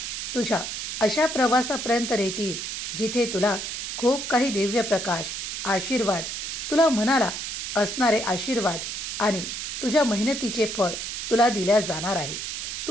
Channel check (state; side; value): noise; right; hiss, 5 dB below the sound